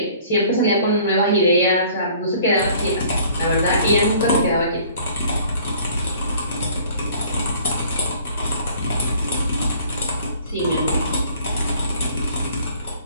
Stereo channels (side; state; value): both; inverted; correlation -0.54